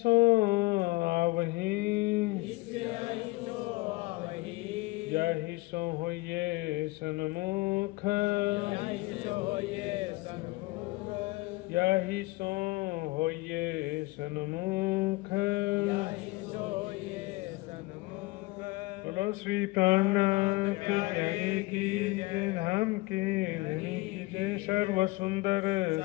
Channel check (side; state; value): right; quieter; 21.8 dB